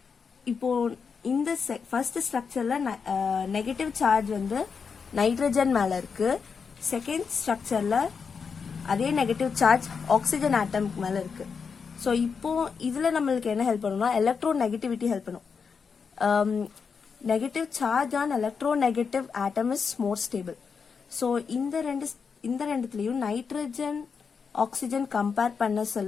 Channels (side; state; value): right; quieter; 5.8 dB